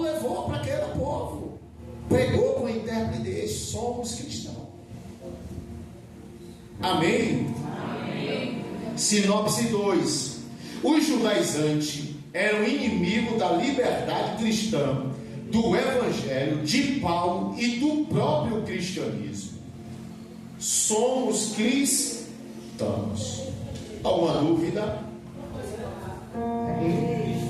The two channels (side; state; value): both; identical; correlation 1.00